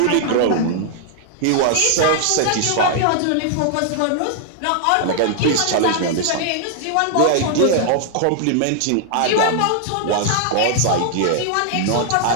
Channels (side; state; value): both; different; correlation 0.00